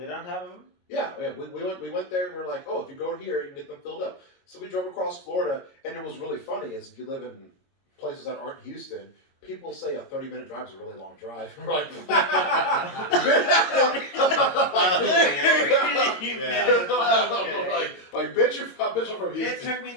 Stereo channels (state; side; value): late; right; 22 ms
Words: on top of them. Yeah. We went there and we were like, oh, if you go here, you can get them filled up. So we drove across Florida, and it was really funny. Is if you live in places that aren't Houston, people say a 30-minute drive is a really long drive. We're like, bitch, you're from Houston. It took me